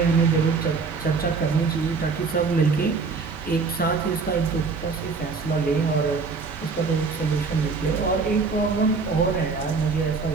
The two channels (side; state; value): left; quieter; 4.7 dB